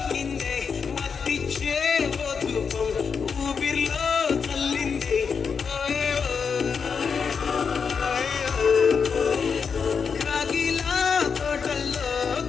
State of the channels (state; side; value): quieter; right; 6.0 dB